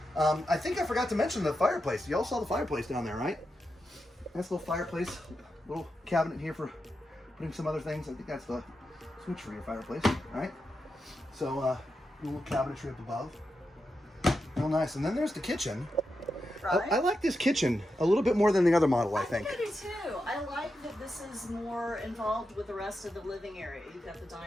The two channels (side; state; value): both; normal; correlation 0.88